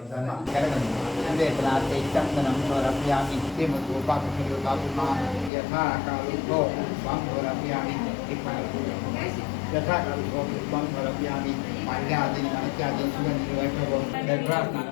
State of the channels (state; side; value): drops out; right; at 5.5 s